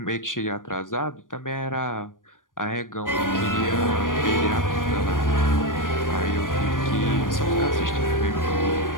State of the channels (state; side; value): late; right; 0.89 ms